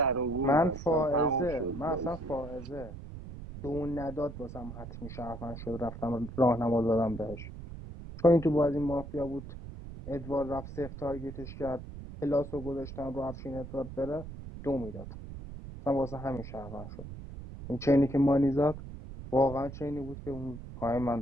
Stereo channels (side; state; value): right; noise; rumble, 11 dB below the sound